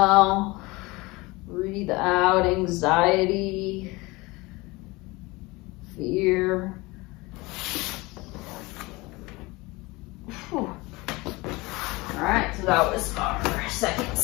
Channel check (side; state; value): right; quieter; 23.0 dB